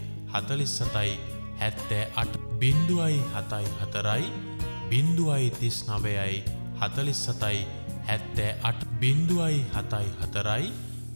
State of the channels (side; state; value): both; inverted; correlation -1.00